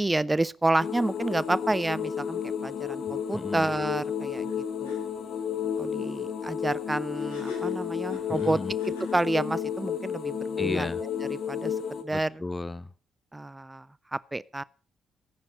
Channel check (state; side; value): normal; both; correlation 0.84